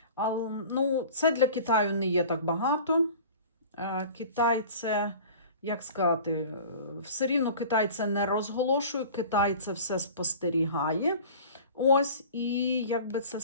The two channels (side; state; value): both; inverted; correlation -0.41